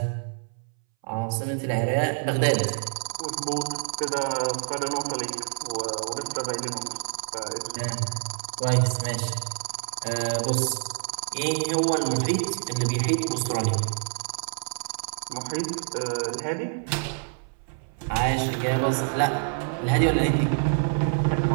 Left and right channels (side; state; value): left; silent; 60 dB below the other